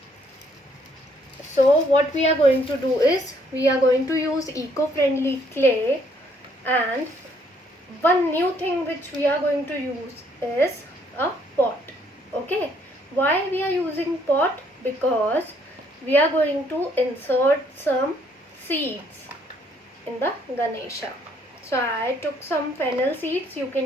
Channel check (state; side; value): normal; both; correlation 0.67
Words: what we are going to do is we are going to use eco-friendly clay, and one new thing which we are going to use is a pot. Okay, why we are using pot? Because we are going to insert some seeds in the ganesha. So I took some fennel seeds. You